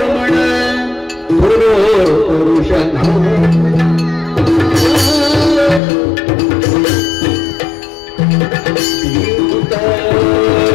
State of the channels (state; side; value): drops out; right; at 5.8 s